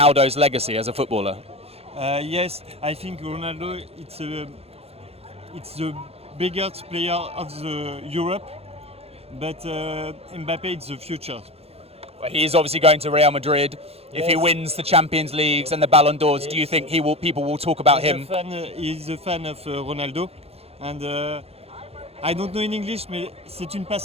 legacy as a footballer? Yes, I think Ronaldo it's the biggest player of the Europe, but Mbappe is the future. He is obviously going to Real Madrid. If he Yes. wins the Champions Leagues and the Ballon d'Ors, do you think people will talk about him? He's a fan of Ronaldo, and I don't know in English, mais c'est une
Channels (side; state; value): left; late; 0.29 ms